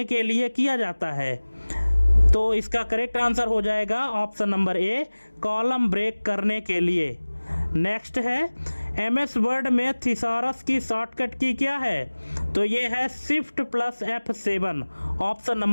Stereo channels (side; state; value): both; inverted; correlation -1.00